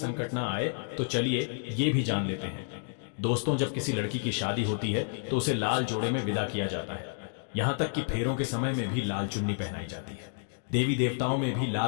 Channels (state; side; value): silent; right; digital silence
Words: ना आए। तो चलिए ये भी जान लेते हैं। दोस्तों, जब किसी लड़की की शादी होती है तो उसे लाल जोड़े में विदा किया जाता है। यहाँ तक कि फेरों के समय में भी लाल चुन्नी पहनाई जाती है। देवी देवताओं में भी